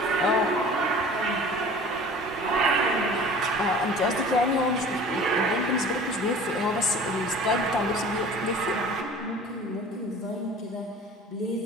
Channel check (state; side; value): normal; both; correlation 0.43